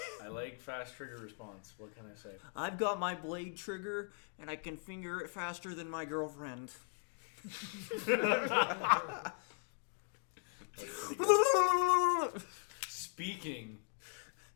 I like fast trigger response. What can I say? I've got my blade trigger and I can finger it faster than my girlfriend. That's pretty good.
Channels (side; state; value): right; silent; 52 dB below the other